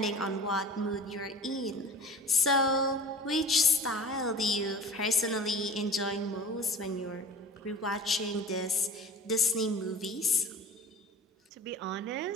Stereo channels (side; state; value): both; normal; correlation 0.40